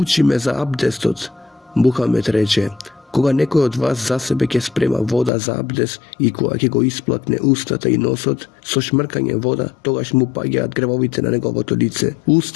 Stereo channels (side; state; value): right; drops out; at 5.3 s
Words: ме за абдестот. Мухамед рече: кога некој од вас за себе ќе спрема вода за абдест и кога ќе го исплакне устата и носот, со шмркање вода, тогаш му паѓаат гревовите на неговото лице,